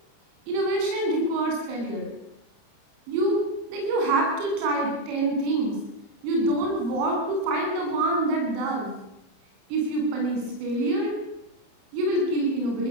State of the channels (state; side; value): late; left; 30 ms